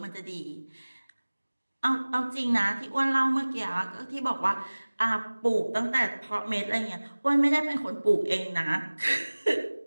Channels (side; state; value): both; inverted; correlation -1.00